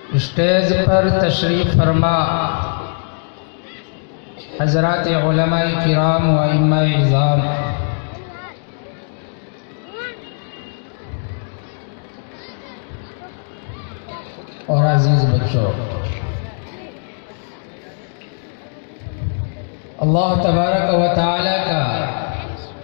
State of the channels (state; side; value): silent; right; digital silence